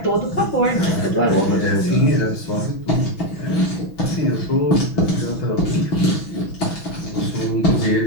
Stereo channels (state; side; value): late; right; 6.1 ms